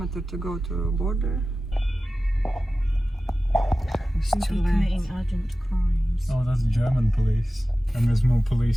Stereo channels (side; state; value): both; normal; correlation 0.95